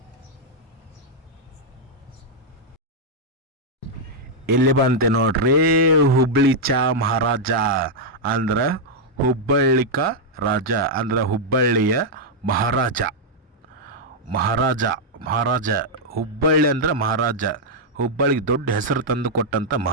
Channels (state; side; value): normal; both; correlation -0.04